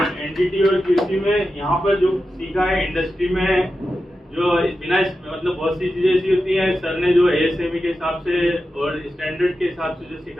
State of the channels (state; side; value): normal; both; correlation 0.91